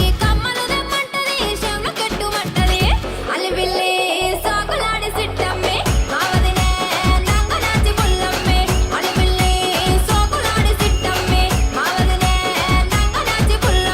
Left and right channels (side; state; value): both; identical; correlation 1.00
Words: కమ్మలు దెమ్మంటది, చెవుల కెట్టుమంటది. అలివిల్లి సాకులాడి సిట్టమ్మి మా వదినే నంగనాచి పుల్లమ్మి. అలివిల్లి సాకులాడి సిట్టమ్మి మా వదినే నంగనాచి